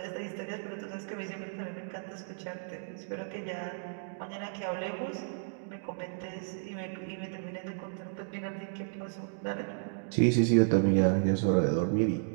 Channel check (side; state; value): left; silent; digital silence